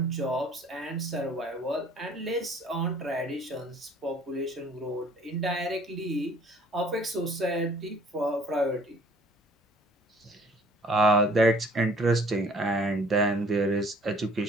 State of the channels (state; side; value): normal; both; correlation 0.54